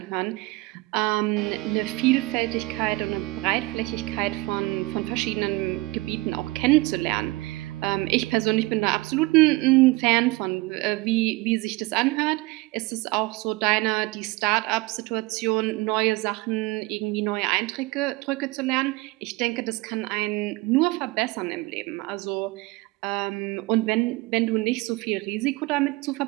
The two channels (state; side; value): quieter; left; 22.0 dB